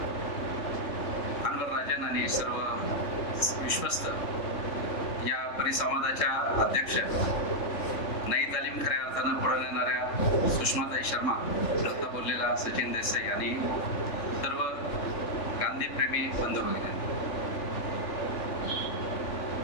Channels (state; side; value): late; right; 3.7 ms